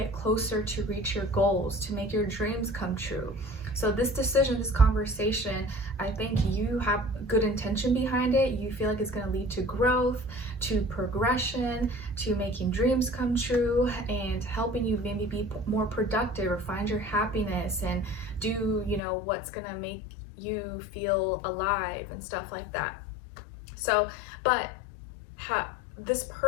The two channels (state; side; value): drops out; right; at 19.0 s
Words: closer to reach your goals, to make your dreams come true. So this decision, this conversation, I think you have good intention behind it. You feel like it's going to lead to growth, to progression, to making dreams come true, and helping you maybe be more productive or find your happiness and do, what's going to make you feel alive and stuff like that. So, but this